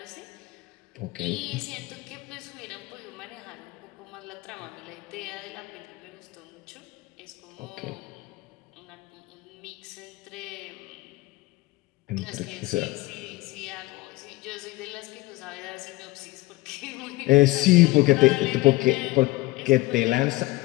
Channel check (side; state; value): right; quieter; 20.6 dB